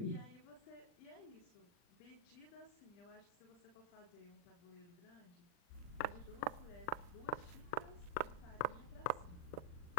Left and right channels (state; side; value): late; right; 40 ms